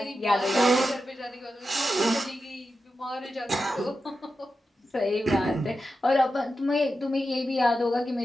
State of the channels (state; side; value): normal; both; correlation 0.90